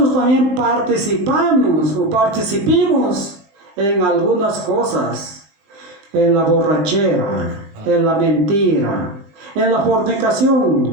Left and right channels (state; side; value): late; left; 20 ms